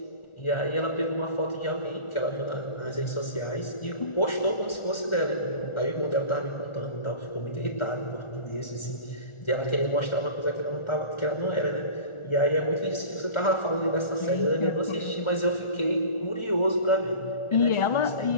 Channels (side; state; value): right; late; 1.4 ms